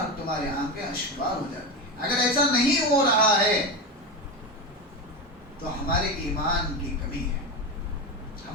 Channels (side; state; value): both; normal; correlation 0.18